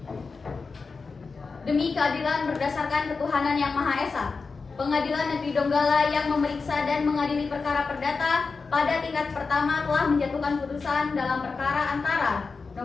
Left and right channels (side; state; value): right; quieter; 4.5 dB